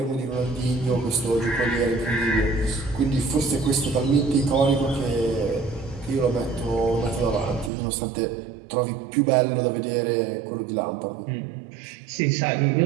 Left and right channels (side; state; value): left; drops out; at 7.7 s